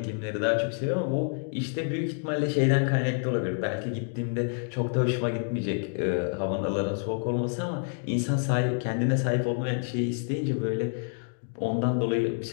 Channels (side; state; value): right; silent; 59 dB below the other